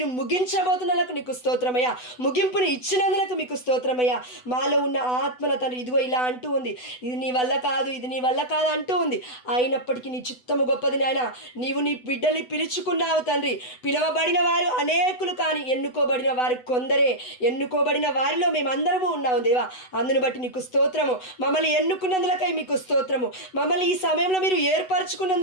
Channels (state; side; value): late; right; 8.0 ms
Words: ముగించబోతున్నందుకు నీకు స్తోత్రమయ్యా. ముగింపుని ఇచ్చినందుకు మీకు స్తోత్రమయ్యా. మాలో ఉన్న ఆత్మన తండ్రి ఇదిగో ఇలా అంటూ ఉంది, ఇది నీ వల్ల కాదు, ఇది నీ వల్ల కాదు అంటూ ఉంది. అయినప్పటికీ నీ చిత్తము గొప్పది నాయన. నీవు నీ బిడ్డల్ని పిలుచుకున్నావు తండ్రి. పిలవబడిన వారు అనేకులు, కానీ ఎన్నుకోబడిన వారు కొందరే. ఎన్నుకోబడిన వారిలో మేమందరము ఉన్నాము దేవా. అందును బట్టి నీకు స్తోత్రము. మమ్మల్ని ఎన్నుకున్నందులకై మీకు స్తోత్రము. మమ్మల్ని ఈ సమయంలో మీరు